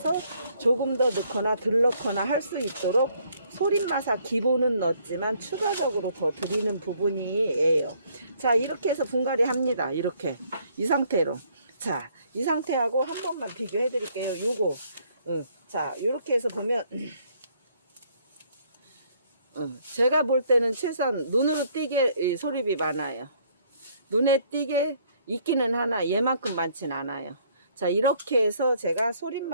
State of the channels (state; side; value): inverted; both; correlation -0.65